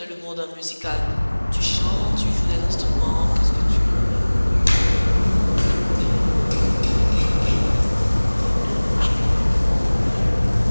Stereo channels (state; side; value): inverted; both; correlation -1.00